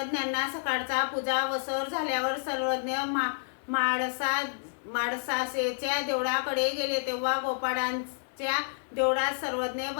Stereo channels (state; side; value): silent; right; 58 dB below the other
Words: सकाळचा पूजा वसर झाल्यावर सर्वज्ञ माळसाच्या देवळाकडे गेले। तेव्हा गोपाळांच्या देवळात सर्वज्ञ